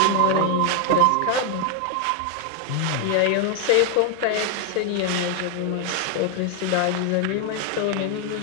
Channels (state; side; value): different; both; correlation 0.01